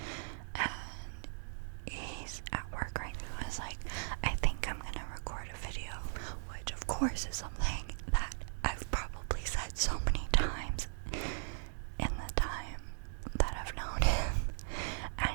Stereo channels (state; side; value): silent; left; digital silence